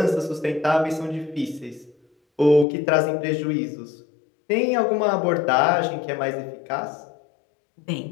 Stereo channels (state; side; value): drops out; right; at 2.7 s